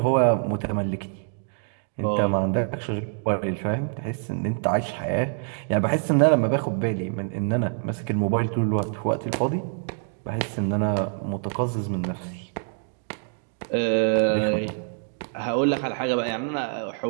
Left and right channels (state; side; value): silent; left; 56 dB below the other